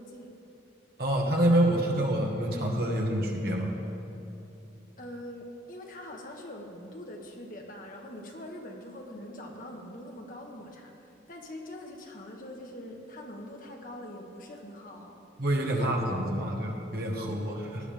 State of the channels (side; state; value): both; normal; correlation 0.63